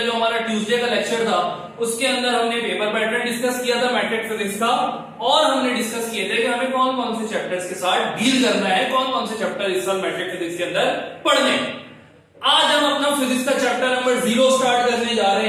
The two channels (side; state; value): both; identical; correlation 1.00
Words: जो हमारा ट्यूसडे का लेक्चर था उसके अंदर हमने पेपर पैटर्न डिस्कस किया था मैट्रिक फिजिक्स का, और हमने डिस्कस किए थे कि हमें कौन कौन से चैप्टर्स के साथ डील करना है, कौन कौन से चैप्टर इस साल मैट्रिक फिजिक्स के अंदर पढ़ने। आज हम अपना फिजिक्स का चैप्टर नंबर 0 स्टार्ट करने जा